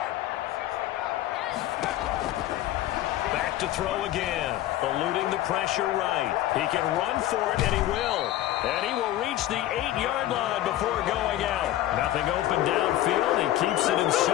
Back to throw again. Eluding the pressure right. He can run for it, and he will. And he will reach the 8-yard line before going out. Nothing open downfield. He keeps it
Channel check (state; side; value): quieter; right; 14.1 dB